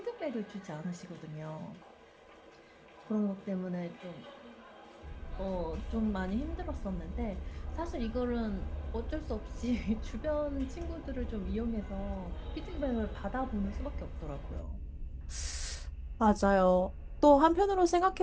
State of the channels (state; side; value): identical; both; correlation 1.00